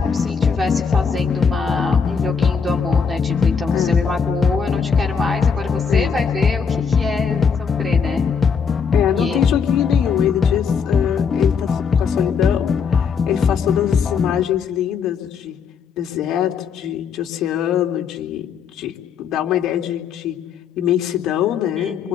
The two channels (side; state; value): right; quieter; 6.2 dB